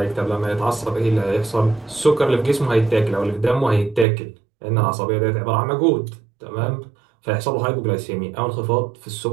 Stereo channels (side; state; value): left; drops out; at 4.0 s